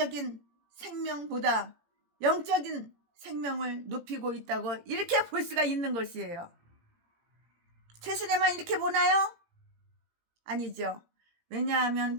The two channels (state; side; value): late; left; 17 ms